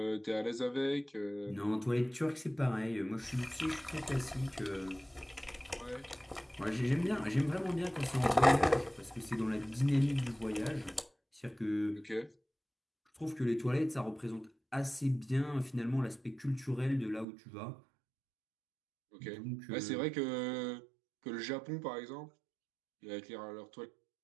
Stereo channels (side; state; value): left; drops out; at 17.2 s